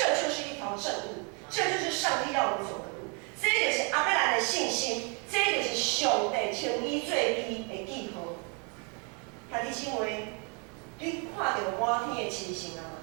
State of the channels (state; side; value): quieter; left; 35.6 dB